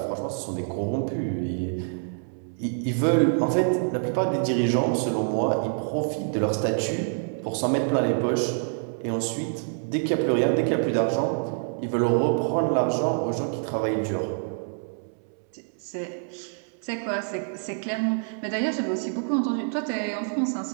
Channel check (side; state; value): left; silent; 61 dB below the other